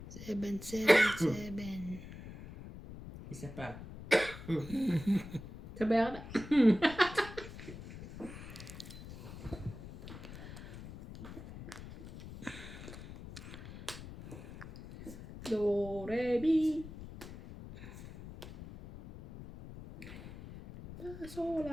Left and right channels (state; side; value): noise; left; rumble, 13 dB below the sound